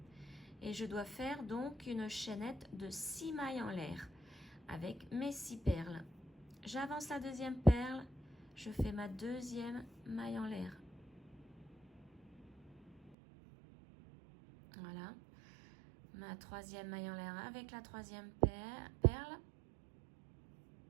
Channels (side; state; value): left; drops out; at 13.2 s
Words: Et je dois faire donc une chaînette de 6 mailles en l'air avec mes 6 perles. J'avance la deuxième perle, je fais ma deuxième maille en l'air. Voilà. Ma troisième maille en l'air avec la troisième perle.